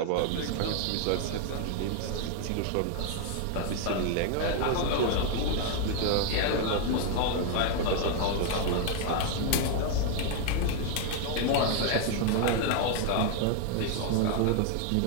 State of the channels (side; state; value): both; different; correlation 0.00